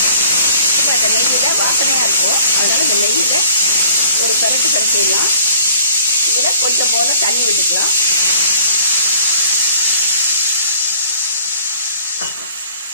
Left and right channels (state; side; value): inverted; both; correlation -0.53